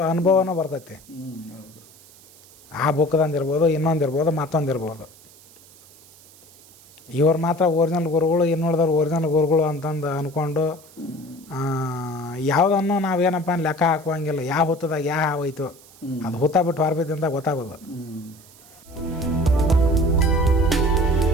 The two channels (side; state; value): right; noise; hiss, 24 dB below the sound